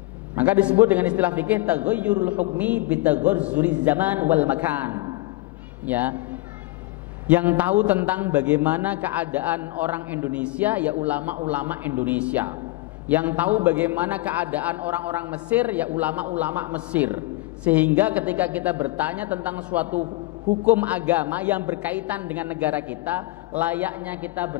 Maka disebut dengan istilah fikih taghayyurul hukmi bitaghayyuriz zaman wal makan. Ya, yang tahu tentang bagaimana keadaan orang Indonesia ya ulama-ulama Indonesia. Yang tahu bagaimana keadaan orang-orang Mesir ya ulama-ulama Mesir. Sehingga ketika kita bertanya tentang suatu hukum agama yang berkaitan dengan negara kita, layaknya kita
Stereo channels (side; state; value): right; quieter; 20.0 dB